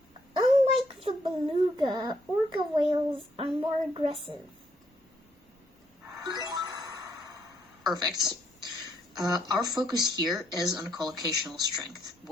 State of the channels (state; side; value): normal; both; correlation 0.72